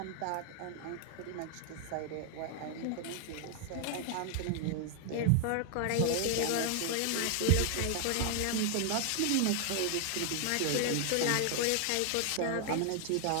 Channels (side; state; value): both; different; correlation 0.00